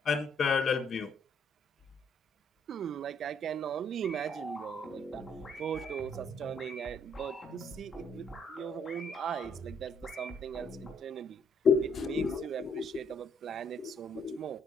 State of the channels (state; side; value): normal; both; correlation 0.67